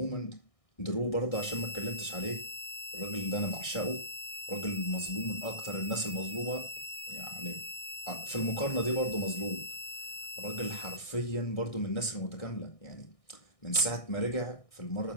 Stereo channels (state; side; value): late; right; 1.6 ms